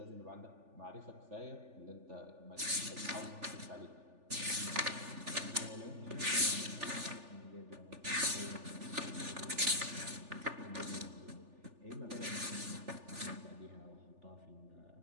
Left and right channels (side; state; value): left; late; 3.4 ms